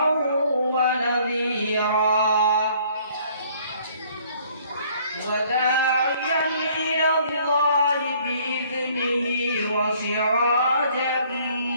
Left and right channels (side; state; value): both; inverted; correlation -0.60